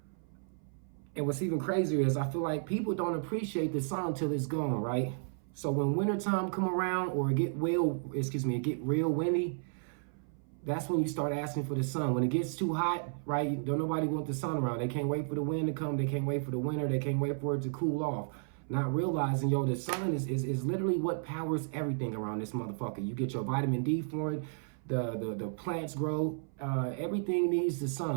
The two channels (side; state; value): left; silent; 56 dB below the other